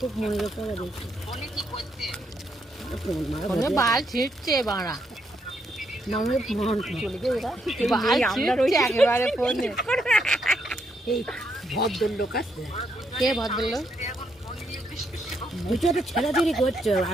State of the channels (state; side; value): normal; both; correlation 0.77